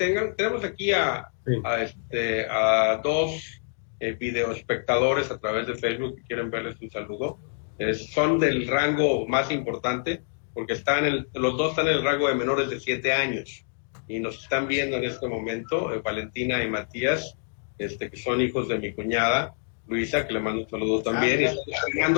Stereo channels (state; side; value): silent; right; digital silence